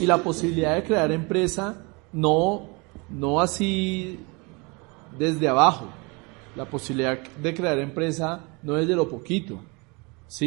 la posibilidad de crear empresa no así desde abajo. La posibilidad de crear empresa no es de lo poquito,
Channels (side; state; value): left; quieter; 28.8 dB